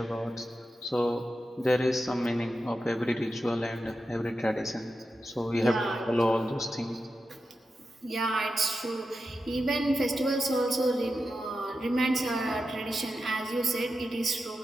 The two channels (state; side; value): normal; both; correlation 0.90